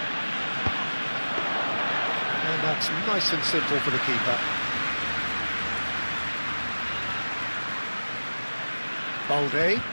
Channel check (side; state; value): both; inverted; correlation -1.00